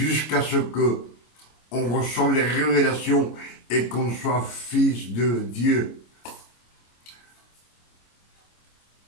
ce que on reçoive les révélations et qu'on soit fils de Dieu.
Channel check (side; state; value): right; late; 25 ms